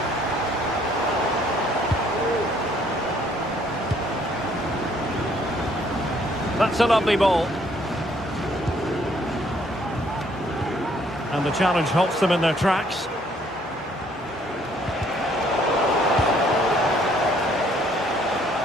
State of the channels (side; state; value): both; normal; correlation 0.64